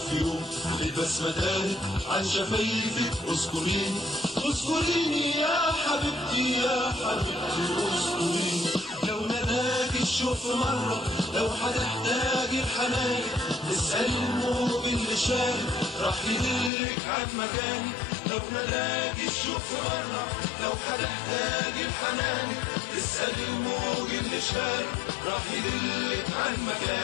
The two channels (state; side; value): drops out; right; at 16.7 s